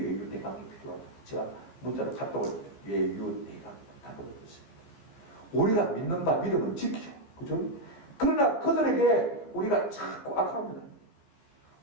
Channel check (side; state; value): right; late; 14 ms